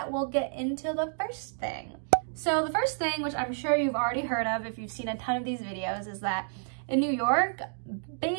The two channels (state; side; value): silent; left; digital silence